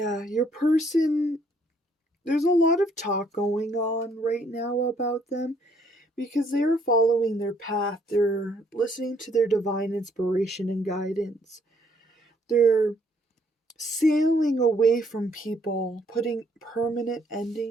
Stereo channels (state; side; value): normal; both; correlation 0.67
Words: your person, there's a lot of talk going on right now about them because they are following their path. They're listening to their divine inspiration and guidance. They're sailing away from people, putting permanent